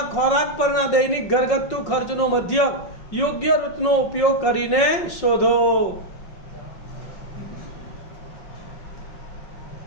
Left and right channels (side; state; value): right; late; 5.5 ms